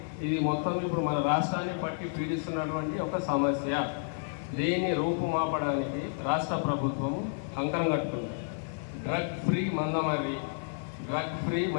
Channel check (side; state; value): right; silent; digital silence